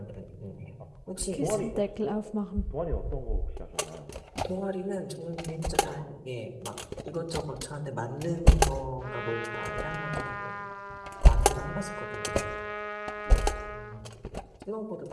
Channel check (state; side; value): identical; both; correlation 1.00